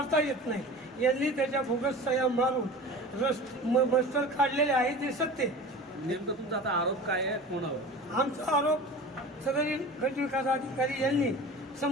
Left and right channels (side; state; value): both; normal; correlation 0.36